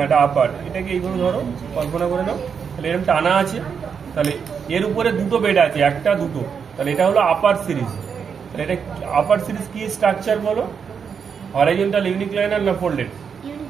এটা আপার, এটাকে এইভাবে ধরো, কল্পনা করে নাও। তাহলে এরকম টানা আছে, তাহলে এর উপরে দুটো বেড আছে, একটা দুটো, তাহলে এটা হলো আপার সিরিজ। তাহলে এটা আপার সিরিজ কি স্ট্রাকচার বলো? হরাইজন্টাল ইউনিক্লাইনার না ফোল্ডেড?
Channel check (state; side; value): quieter; left; 6.6 dB